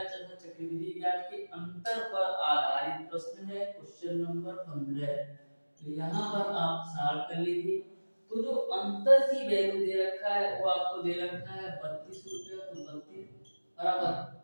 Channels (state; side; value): inverted; both; correlation -1.00